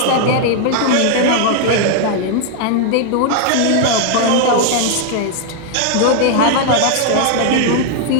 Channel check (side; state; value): both; different; correlation 0.00